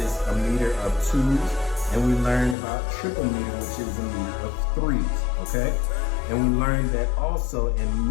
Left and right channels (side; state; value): right; drops out; at 2.6 s